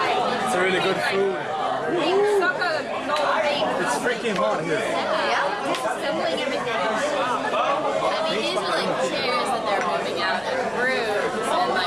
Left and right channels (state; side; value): identical; both; correlation 1.00